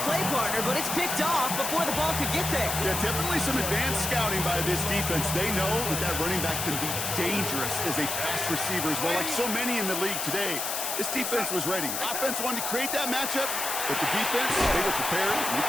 play partner, but it's picked off before the ball could get there. Yeah, definitely some advanced scouting by this defense. They know that running back can be dangerous as a pass receiver as well, like so many in the league today. This defense was ready. Offense wanted to create that matchup, but the defense, they were prepared, and they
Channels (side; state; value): left; noise; hiss, 2 dB below the sound